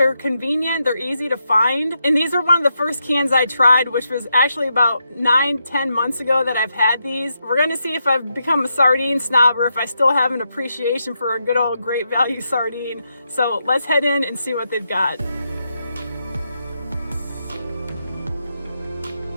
convenient, they're easy to find. And these are one of the first cans I tried, which was actually about 9-10 months ago that I've had these. We're gonna see if I've become a sardine snob or if I still have an appreciation for a good old Great Value sardine. So let's head in and see what they've got.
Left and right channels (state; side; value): inverted; both; correlation -0.83